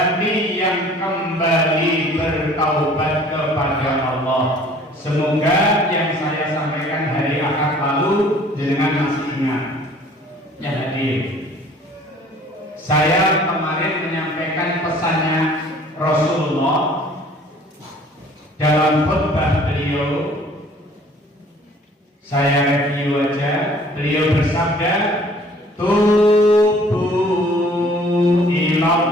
yang kembali bertaubat kepada Allah. Semoga yang saya sampaikan hari Ahad lalu dengan masih ingat. Ya hadir. Saya kemarin menyampaikan pesannya Rasulullah dalam khutbah beliau. Saya review aja. Beliau bersabda, tubu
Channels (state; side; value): normal; both; correlation 0.53